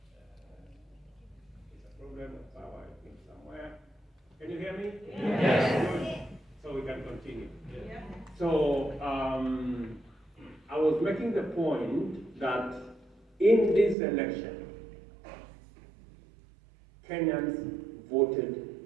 It's a problem of power, I think, somewhere. Can you hear me? Yes. So we can continue. Yes. So I was making the point that in this election, Kenyans voted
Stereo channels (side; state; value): left; drops out; at 14.0 s